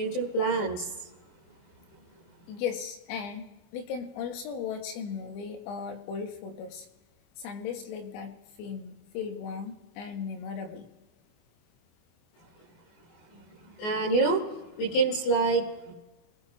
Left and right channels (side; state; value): right; late; 25 ms